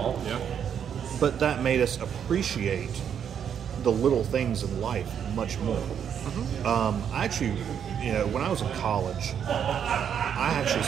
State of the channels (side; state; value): left; quieter; 8.3 dB